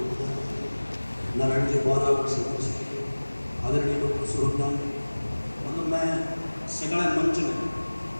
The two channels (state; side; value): inverted; both; correlation -1.00